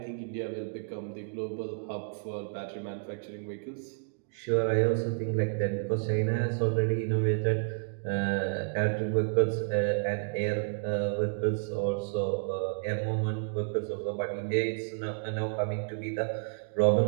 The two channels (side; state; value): left; silent; digital silence